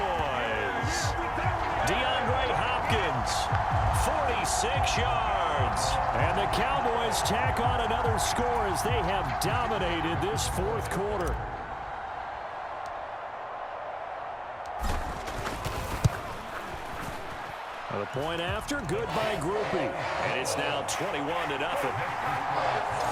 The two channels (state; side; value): identical; both; correlation 1.00